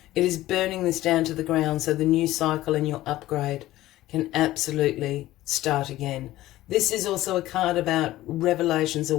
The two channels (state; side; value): quieter; right; 15.8 dB